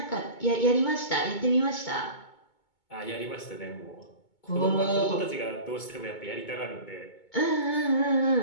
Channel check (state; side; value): late; right; 2.2 ms